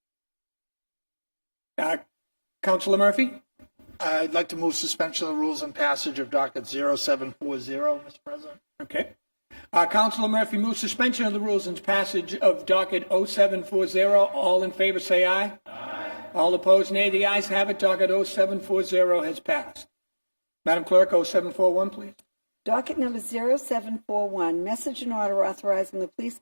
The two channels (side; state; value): both; inverted; correlation -1.00